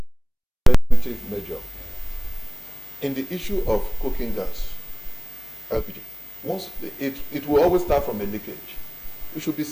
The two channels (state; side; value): identical; both; correlation 1.00